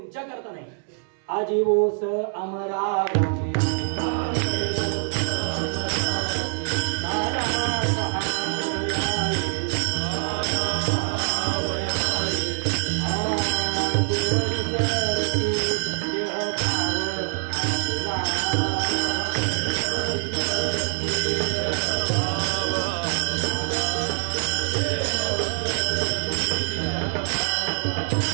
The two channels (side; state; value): left; silent; 62 dB below the other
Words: करता नाही. आजीवोस अमरा